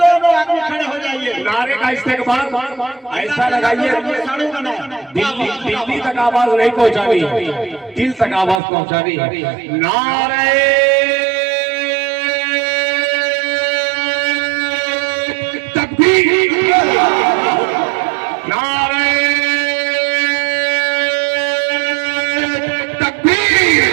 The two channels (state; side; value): drops out; left; at 8.6 s